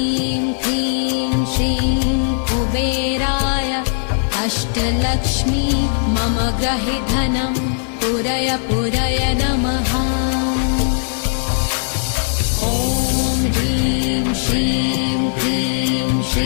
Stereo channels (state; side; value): silent; right; 64 dB below the other